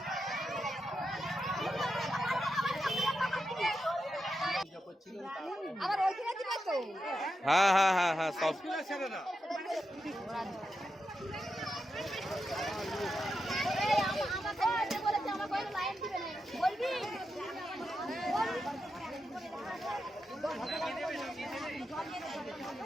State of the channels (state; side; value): normal; both; correlation 0.87